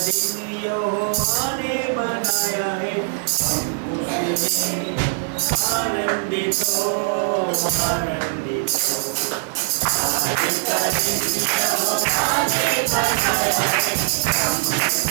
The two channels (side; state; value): left; silent; 65 dB below the other